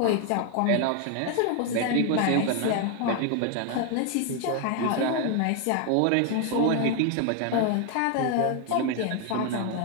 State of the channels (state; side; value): different; both; correlation 0.01